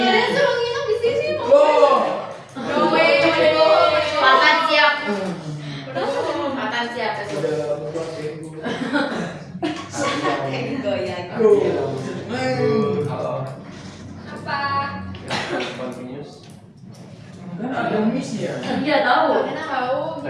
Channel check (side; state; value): both; identical; correlation 1.00